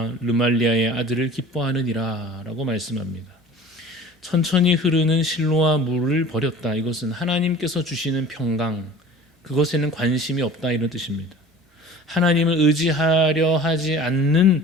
르말리아의 아들을 기뻐하느니라 라고 말씀합니다. 천천히 흐르는 실로와 물을 버렸다. 이것은 하나님께서 주시는 평강, 그것에는 관심이 없다 이런 뜻입니다. 하나님을 의지하려 하지 않는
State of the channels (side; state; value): both; normal; correlation 0.43